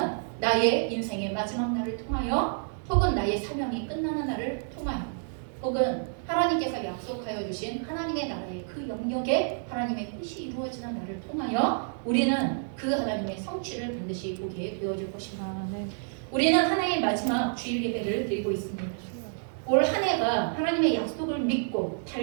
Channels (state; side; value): silent; left; digital silence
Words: 나의 인생의 마지막 날을 통하여, 혹은 나의 사명이 끝나는 날을 통하여, 혹은 하나님께서 약속하여 주신 하나님의 나라의 그 영역에 하나님의 뜻이 이루어지는 날을 통하여 우리는 그 하나님의 성취를 반드시 보게 되어질 것입니다. 우리는 하나의 마지막 주일 예배를 드리고 있습니다. 올 한 해가 하나님의 약속을 믿고